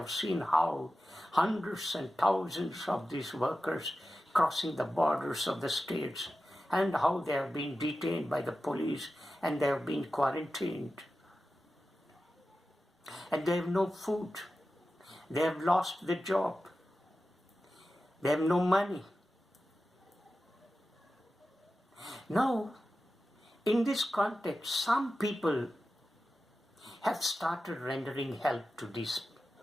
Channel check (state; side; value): normal; both; correlation 0.93